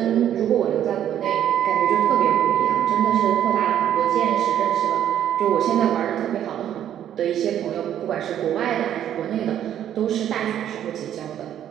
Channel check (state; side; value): quieter; left; 10.6 dB